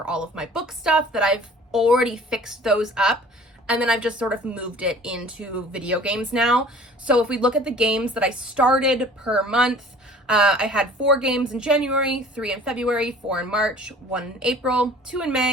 all of my book stuff that I've already fixed those up. And then I've just sort of moved it into video games now. So if we look at the games that I started per month, I had 4 games in January, 3 in February, 4 in March, 1 in April, 2 in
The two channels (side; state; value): both; normal; correlation 0.48